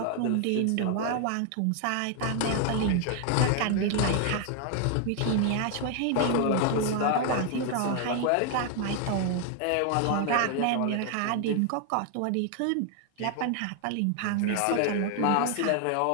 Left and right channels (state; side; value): different; both; correlation 0.00